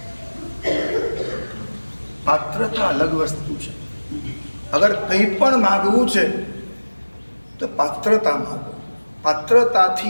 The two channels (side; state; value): both; inverted; correlation -1.00